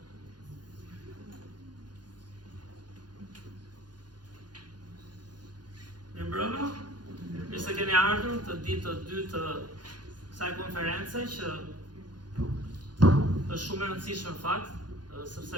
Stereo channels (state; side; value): late; left; 0.70 ms